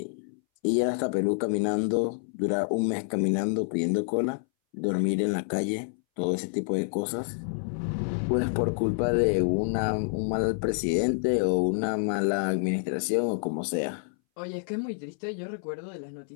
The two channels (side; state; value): right; silent; 59 dB below the other